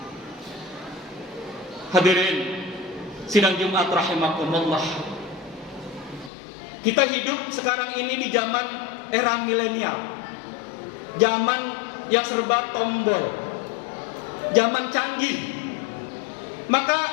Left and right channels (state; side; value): drops out; right; at 6.3 s